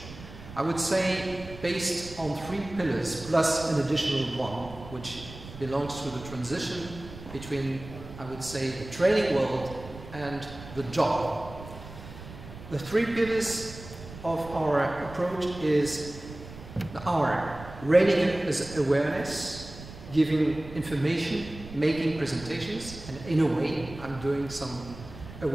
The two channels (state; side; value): noise; right; rumble, 14 dB below the sound